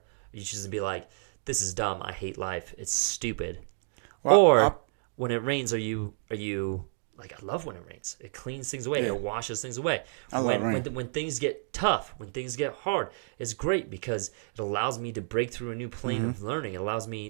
you choose to be like, this is dumb, I hate life, it's stupid. Well, Or when it rains, are you like, I love when it rains. It cleans things away. Yeah. It washes things away. I love When rain. when things get tough, when things get hard, it's great because it allows me to break through a new plane of learning. It allows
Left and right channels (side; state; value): left; silent; digital silence